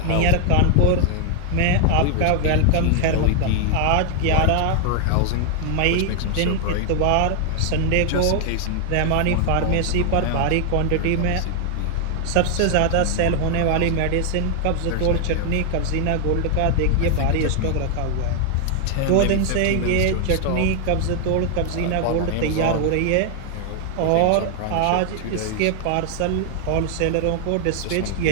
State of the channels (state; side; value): different; both; correlation 0.00